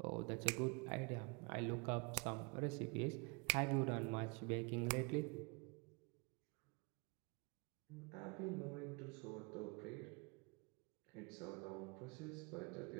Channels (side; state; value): left; quieter; 31.7 dB